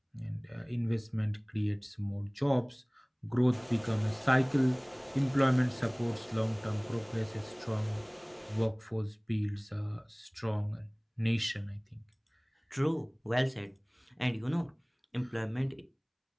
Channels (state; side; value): identical; both; correlation 1.00